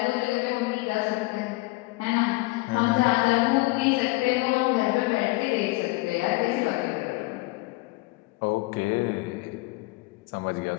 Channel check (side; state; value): right; quieter; 23.1 dB